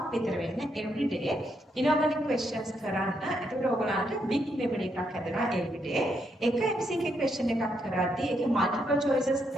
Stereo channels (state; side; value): normal; both; correlation 0.78